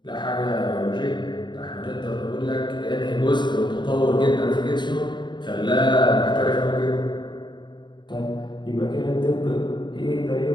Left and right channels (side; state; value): right; late; 0.22 ms